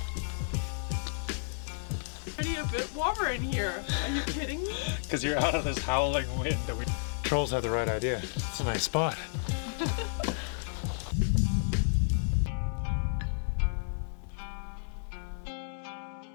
Already a bit warmer in here. Are you kidding me? Because you're out of this howling wind. Trolls had the right idea. It's a nice spot.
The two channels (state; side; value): silent; right; 57 dB below the other